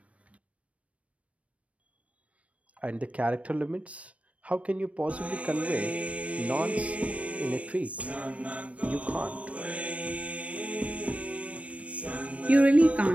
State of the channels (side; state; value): left; late; 0.064 ms